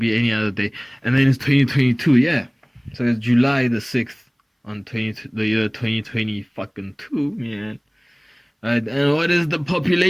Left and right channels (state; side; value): identical; both; correlation 1.00